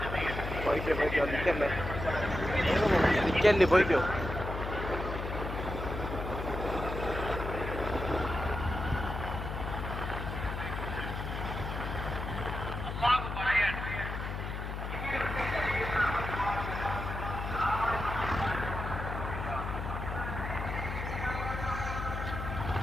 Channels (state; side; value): noise; left; hum, 5 dB below the sound